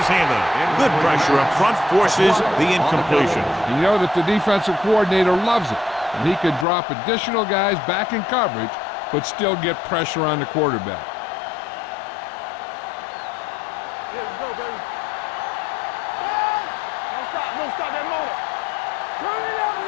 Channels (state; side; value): drops out; right; at 6.7 s